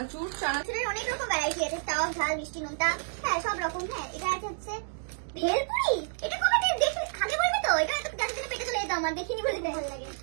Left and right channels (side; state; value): left; silent; 58 dB below the other